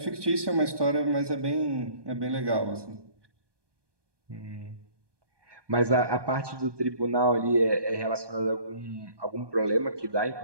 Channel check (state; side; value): late; left; 1.2 ms